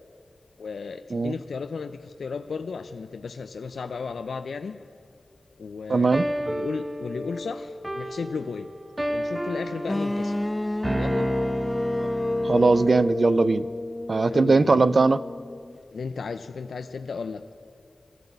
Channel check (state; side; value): normal; both; correlation 0.95